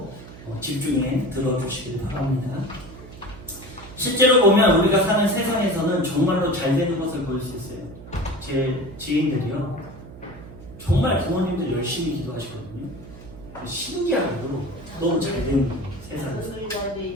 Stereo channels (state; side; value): noise; right; hum, 16 dB below the sound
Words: 집중해 들어주시길 바랍니다. 실제로 보면 우리가 사는 세상에서는 정말로 잘 되는 것을 볼 수 있어요. 제 지인들이요 정말 부모님들 열심히 기도하시거든요. 신기하게도 너무 잘 되는 세상에서